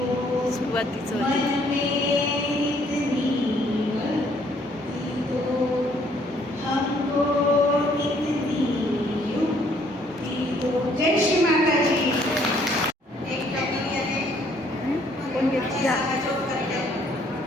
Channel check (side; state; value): both; normal; correlation 0.64